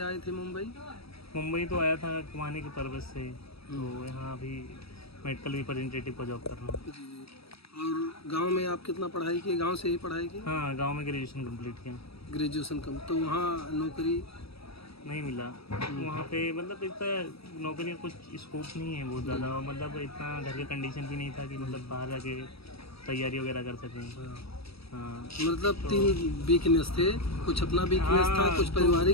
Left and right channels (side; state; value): right; late; 0.77 ms